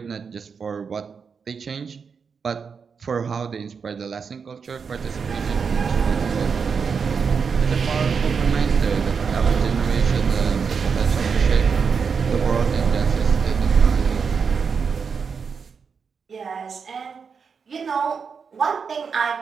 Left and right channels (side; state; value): left; quieter; 5.9 dB